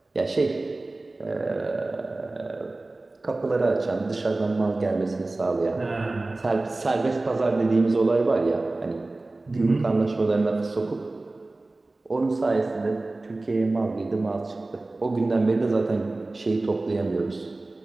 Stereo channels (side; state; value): left; quieter; 3.0 dB